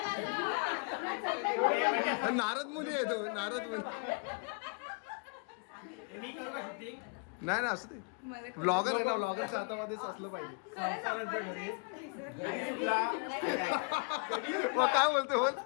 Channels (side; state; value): right; quieter; 36.4 dB